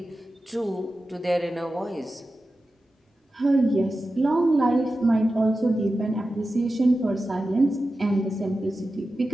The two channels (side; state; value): both; normal; correlation 0.93